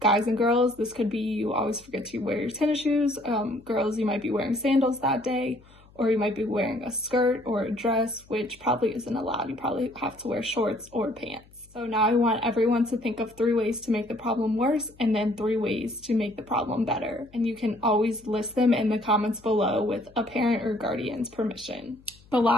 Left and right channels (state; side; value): noise; left; hum, 27 dB below the sound